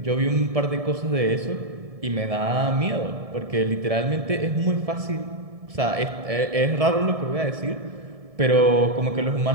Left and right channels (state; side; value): late; left; 1.7 ms